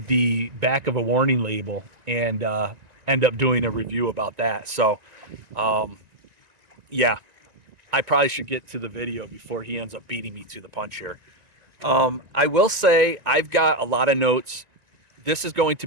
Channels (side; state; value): left; late; 1.9 ms